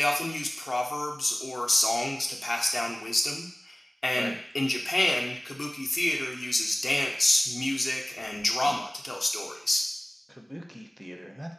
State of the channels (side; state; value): both; normal; correlation 0.98